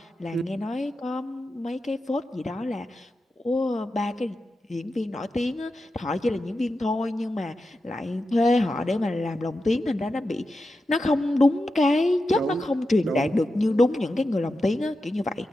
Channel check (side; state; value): both; normal; correlation 0.90